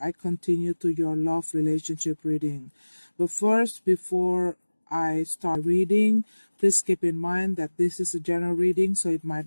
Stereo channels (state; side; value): inverted; both; correlation -1.00